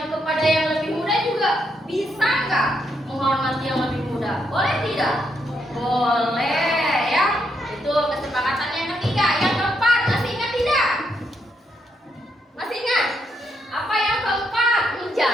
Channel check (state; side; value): normal; both; correlation 0.78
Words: kepada yang lebih muda juga bisa nggak menghormati yang lebih muda? Boleh tidak? Boleh ya. Itu kesepakatan yang ketiga. Yang keempat, masih ingat tidak? Masih ingat? Apa yang keempat?